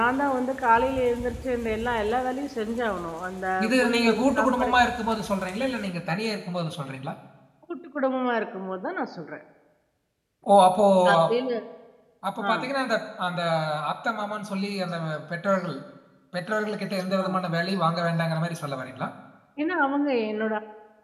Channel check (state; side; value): identical; both; correlation 1.00